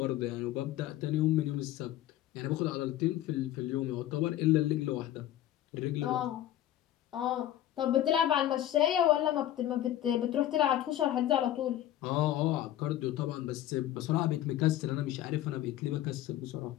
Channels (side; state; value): right; quieter; 12.9 dB